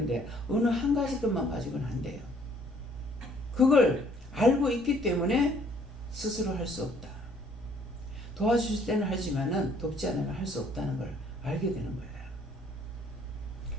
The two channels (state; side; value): normal; both; correlation 0.61